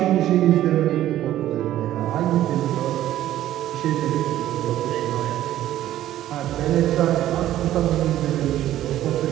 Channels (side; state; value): left; quieter; 13.1 dB